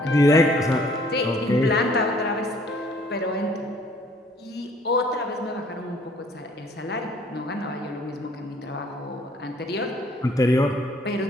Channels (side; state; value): both; normal; correlation 0.59